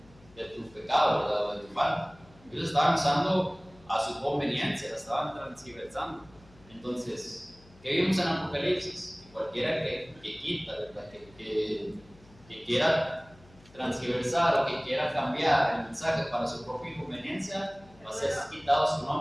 de tu pecado, ¿verdad? O de tu falta. Ellos estaban usando a su conveniencia, la estaban transgiversando. Entonces, ¿qué vimos en Apocalipsis? Que cualquiera que quita, ¿verdad? Que quiera transgiversar o que quiera cambiar el mensaje para su propia conveniencia, va a ser quitado su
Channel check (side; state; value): left; noise; hum, 25 dB below the sound